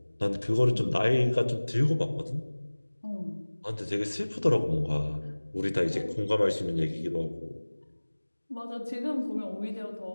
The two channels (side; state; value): both; inverted; correlation -1.00